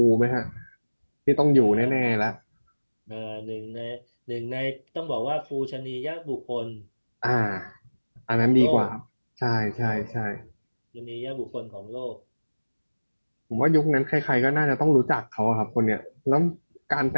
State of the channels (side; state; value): both; inverted; correlation -1.00